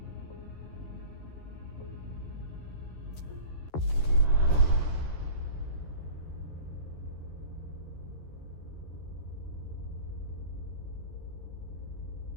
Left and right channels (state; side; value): late; right; 13 ms